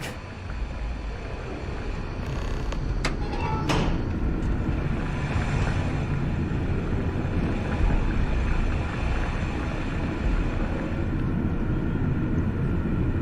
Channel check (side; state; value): both; identical; correlation 1.00